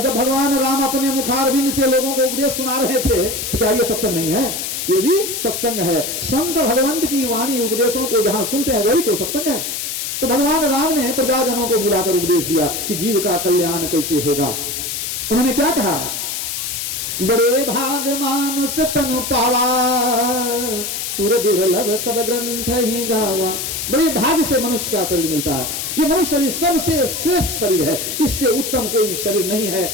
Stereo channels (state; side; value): noise; left; hiss, 4 dB below the sound